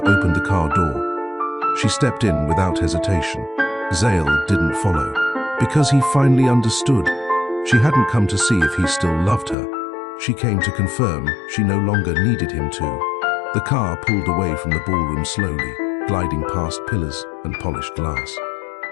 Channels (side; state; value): right; drops out; at 9.6 s